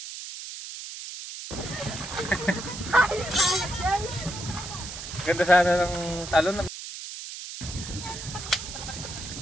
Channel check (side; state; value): right; noise; hiss, 10 dB below the sound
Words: Ganda sana ng talon.